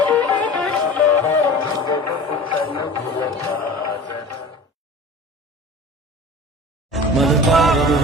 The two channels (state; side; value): normal; both; correlation 0.38